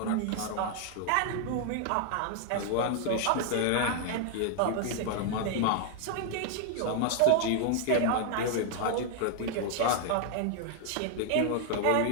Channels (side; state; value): both; different; correlation 0.00